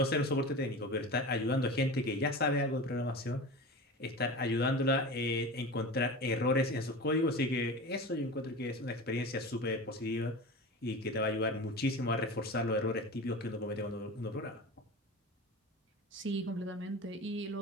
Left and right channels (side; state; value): both; normal; correlation 0.31